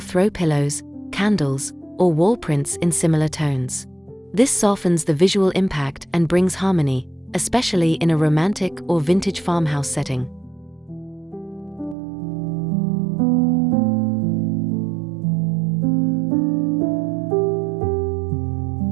pillows, candles, or wall prints in similar tones. This softens the visual impact and brings harmony, especially in a romantic or vintage farmhouse setting.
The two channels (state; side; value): drops out; left; at 12.0 s